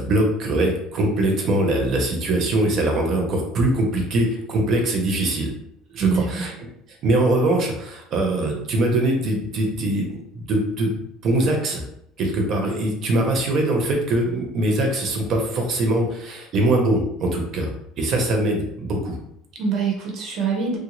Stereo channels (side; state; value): both; normal; correlation 0.55